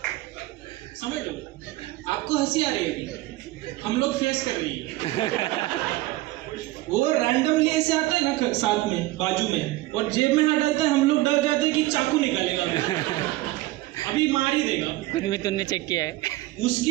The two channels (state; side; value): quieter; left; 18.3 dB